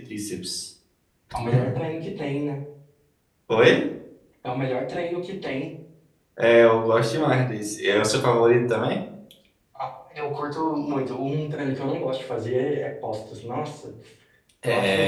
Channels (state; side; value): identical; both; correlation 1.00